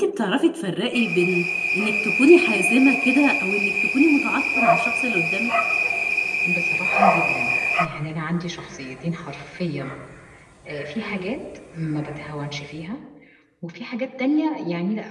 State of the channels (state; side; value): identical; both; correlation 1.00